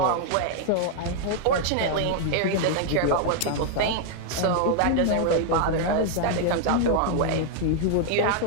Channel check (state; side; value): different; both; correlation 0.00